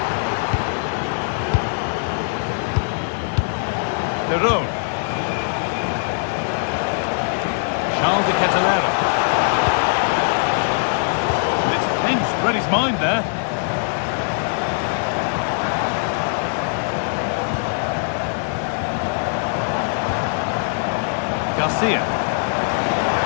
Perron. Charles de Catalera. It's pinched, read his mind there. Garcia.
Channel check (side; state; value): right; silent; 58 dB below the other